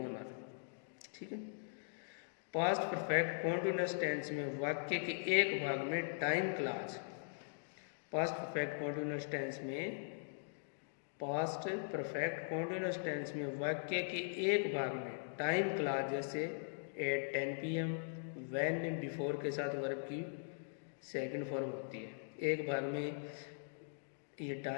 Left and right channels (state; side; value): silent; right; digital silence